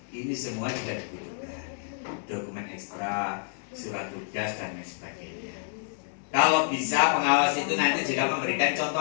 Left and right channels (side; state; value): right; silent; 59 dB below the other